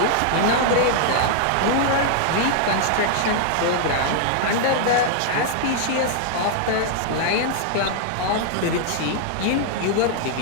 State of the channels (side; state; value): both; different; correlation -0.01